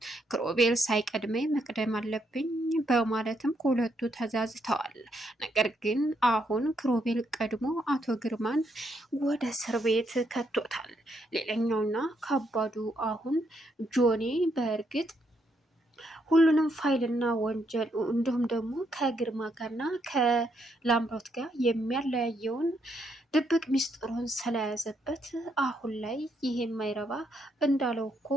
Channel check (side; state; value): both; normal; correlation 0.76